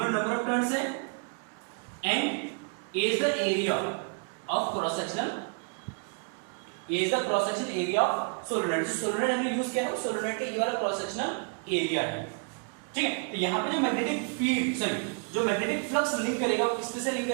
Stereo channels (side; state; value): left; quieter; 37.6 dB